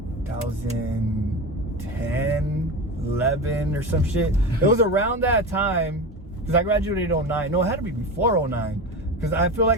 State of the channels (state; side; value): normal; both; correlation 0.24